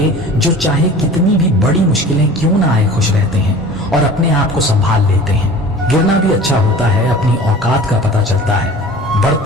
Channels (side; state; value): both; normal; correlation 0.42